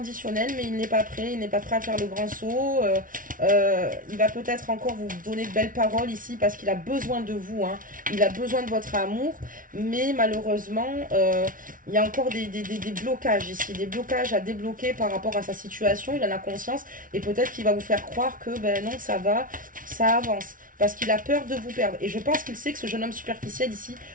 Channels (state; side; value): late; left; 0.39 ms